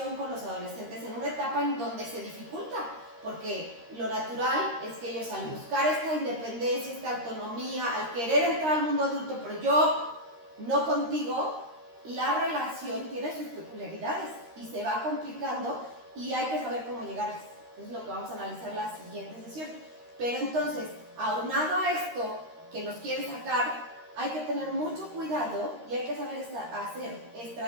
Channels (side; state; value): left; late; 13 ms